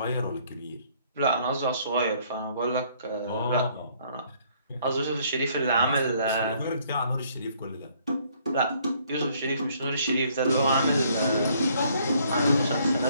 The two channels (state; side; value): inverted; both; correlation -0.64